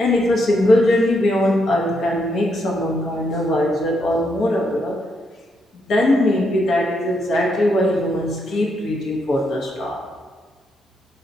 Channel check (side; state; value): both; normal; correlation 0.78